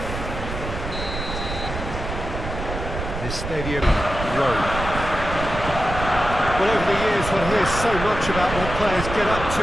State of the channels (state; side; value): noise; right; rumble, 7 dB below the sound